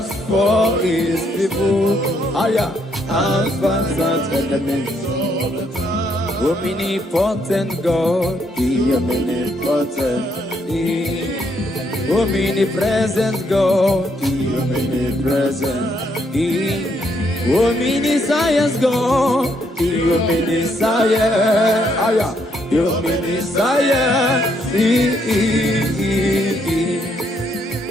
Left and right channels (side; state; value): both; normal; correlation 0.73